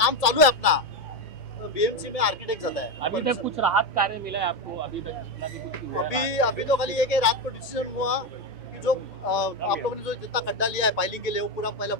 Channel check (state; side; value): normal; both; correlation 0.11